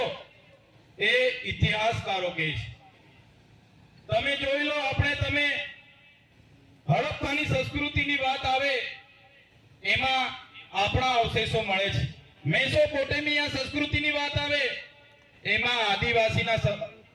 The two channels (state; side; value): identical; both; correlation 1.00